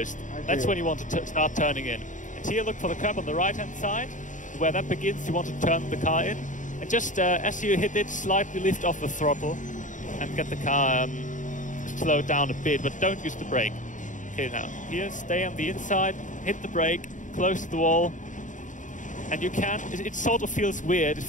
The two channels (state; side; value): late; right; 0.37 ms